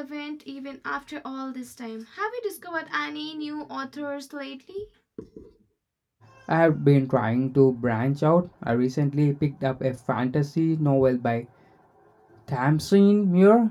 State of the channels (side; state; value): both; identical; correlation 1.00